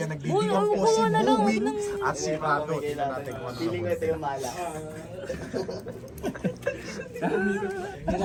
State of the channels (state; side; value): identical; both; correlation 1.00